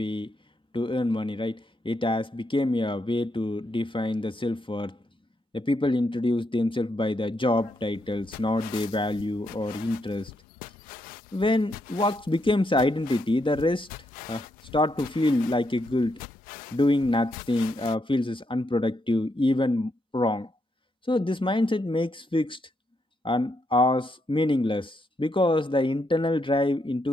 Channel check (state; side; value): normal; both; correlation 0.79